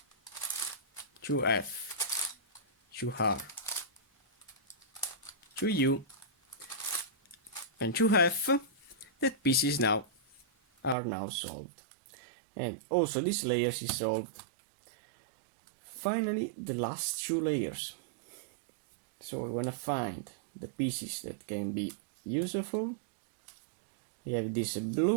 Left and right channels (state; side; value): drops out; left; at 11.0 s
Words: shu F, shu har, shu U, and shu hef, that pieces now are now solved, and also this layers is solved. Finally the last two layers. So I want to find the pieces that can be useful. I have this